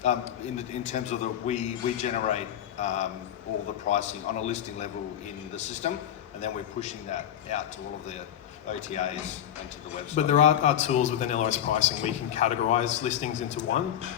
In terms of we generate all the pricing on a listing level in the system, and then we're pushing that out to all of the OTAs and to the website. But there are tools within LOS pricing where you can categorise listings into one,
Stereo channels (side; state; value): right; quieter; 10.4 dB